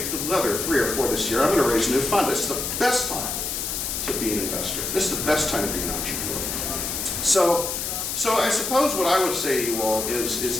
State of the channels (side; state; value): left; noise; hiss, 3 dB below the sound